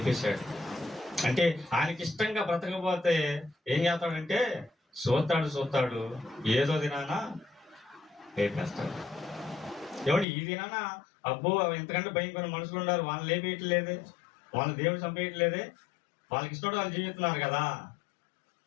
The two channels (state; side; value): drops out; right; at 10.2 s